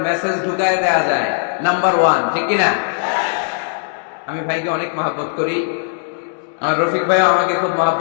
মেসেজ ঢুকায় দেয়া যায়, নাম্বার 1, ঠিক কিনা? আমি ভাইকে অনেক মহব্বত করি, আমার রফিক ভাই আমাকে খুব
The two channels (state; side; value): silent; right; digital silence